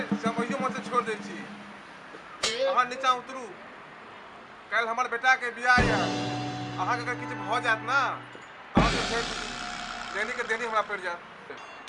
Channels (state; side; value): identical; both; correlation 1.00